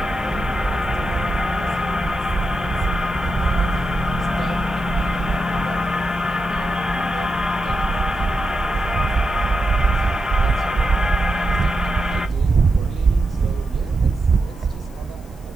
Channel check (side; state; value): left; noise; hiss, 27 dB below the sound